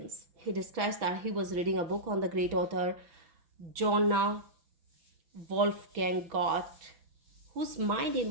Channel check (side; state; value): left; late; 5.9 ms